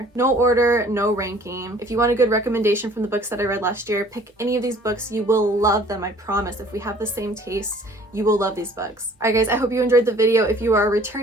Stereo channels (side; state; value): both; normal; correlation 0.53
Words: No order, no ranking. If you want a good recommendation from the books that I read last year, pick any of these books. You will love them, I promise. If we have the same tastes, you will love these books. Alright guys, I hope you enjoyed the video. If you are a